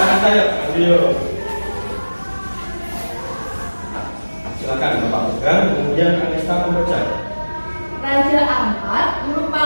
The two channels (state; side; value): inverted; both; correlation -1.00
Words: angkat saya. Ayo. Silakan Bapak pegang, kemudian Arista membaca. Raja Ampat